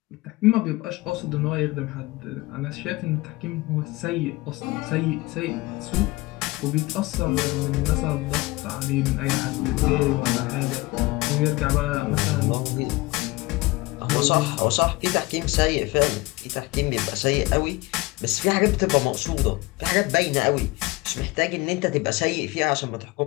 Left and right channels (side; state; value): right; quieter; 21.8 dB